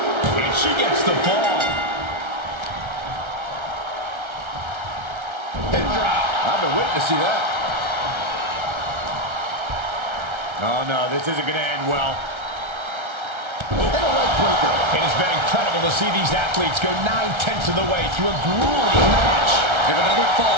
And she gets the fall. And drop. I've been witnessing that. Oh no, this isn't going to end well. And a leg breaker. It has been incredible to see these athletes go 9/10 of the way through a grueling match. If another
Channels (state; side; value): late; left; 1.3 ms